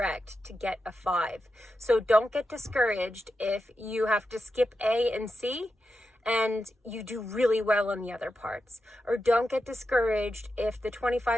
to get a 5. So don't get discouraged if you have to skip A and C and you do really well on the other parts. Or don't get discouraged if the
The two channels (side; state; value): both; normal; correlation 0.89